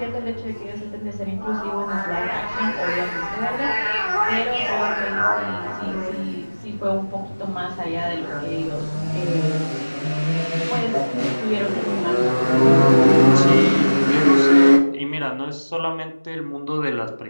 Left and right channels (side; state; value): both; inverted; correlation -1.00